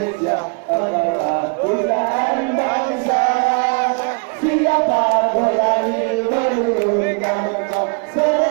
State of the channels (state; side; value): quieter; left; 37.6 dB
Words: adalah pujian Bangsa siapa berani menurunkan